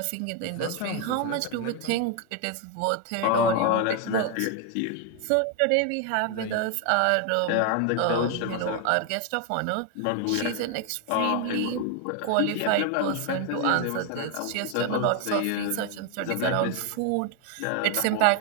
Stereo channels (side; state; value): both; different; correlation 0.01